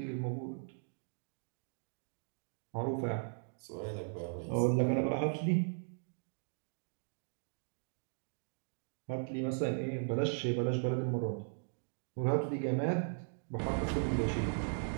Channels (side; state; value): left; silent; digital silence